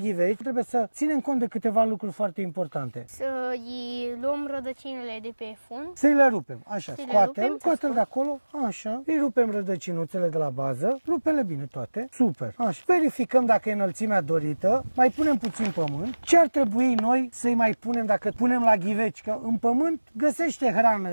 trebuie să ținem cont de câteva lucruri foarte importante. Să-i luăm rădăcinile de pe fund. Să-i le rupem, așa, scoate-l de acolo, așa, îi rupem rădăcinuțele de la bază, rupele bine toate, super, așa. Verificăm dacă e înălțimea dorită, mai punem puțin pământ. Ce ar trebui noi să-i mai punem dacă punem la ghiveci? Că în pământ găsește hrană,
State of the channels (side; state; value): both; inverted; correlation -1.00